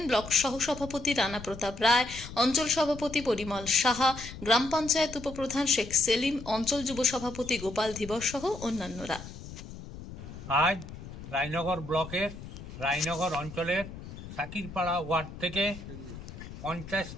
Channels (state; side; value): noise; left; rumble, 12 dB below the sound